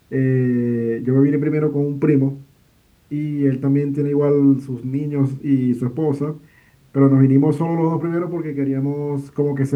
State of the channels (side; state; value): both; identical; correlation 1.00